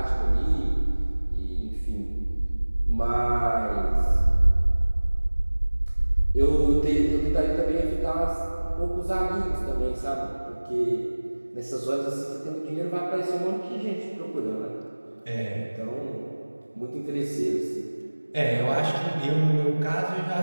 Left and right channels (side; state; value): both; inverted; correlation -1.00